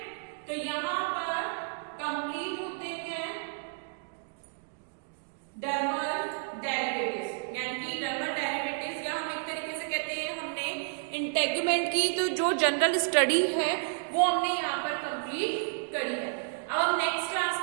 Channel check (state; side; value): silent; left; digital silence